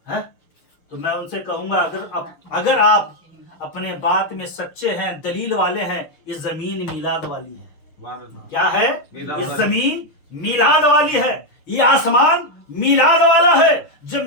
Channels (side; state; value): right; late; 6.2 ms